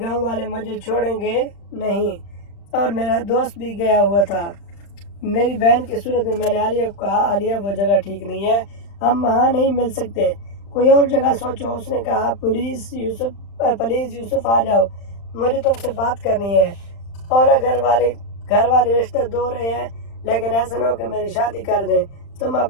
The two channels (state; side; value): late; right; 35 ms